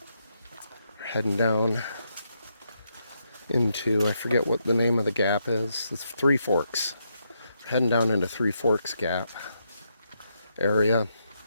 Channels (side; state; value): both; inverted; correlation -0.80